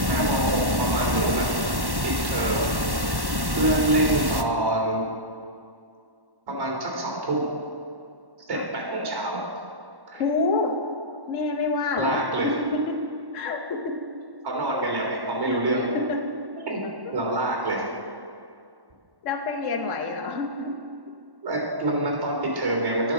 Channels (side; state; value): left; late; 1.1 ms